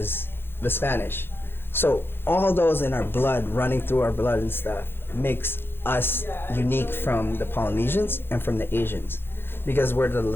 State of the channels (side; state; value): right; late; 0.10 ms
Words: the Spanish. So all those in our blood, running through our blood and stuff, makes us unique from the Polynesians and from the Asians, because we're the